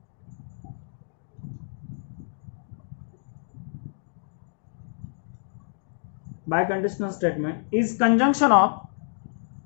Biconditional statement is conjunction of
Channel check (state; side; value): silent; right; digital silence